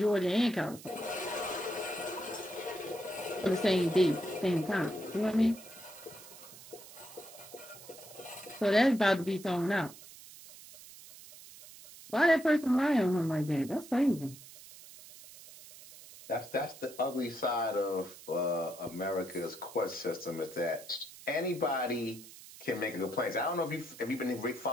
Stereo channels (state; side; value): noise; right; hiss, 17 dB below the sound